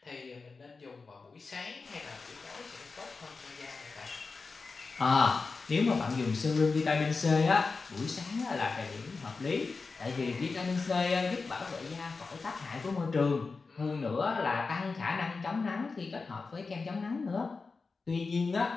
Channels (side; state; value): right; quieter; 4.3 dB